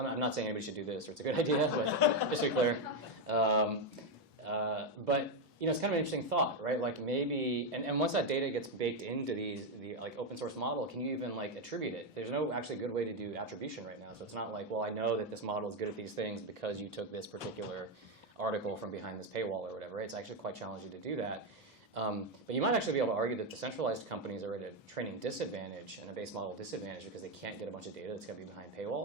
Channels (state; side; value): normal; both; correlation 0.05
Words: not saying anybody should do this or it's a good idea, but just to be clear. But it's kind of an interesting thought, right? Like maybe, and once that data gets baked into the like open source model, can you even like attribute it? There's no actually good way to do attribution right now. So it's not like, well, I know that this model is good at these things because you took this particular article from behind this paywall or whatever. It's actually quite challenging to do that. But you might actually be able to argue that the centralized companies are at a training disadvantage and a base model disadvantage because they can't get a bunch of data that's going to be behind